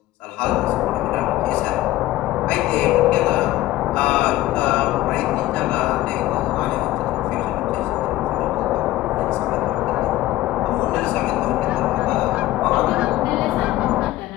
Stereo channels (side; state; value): right; quieter; 16.3 dB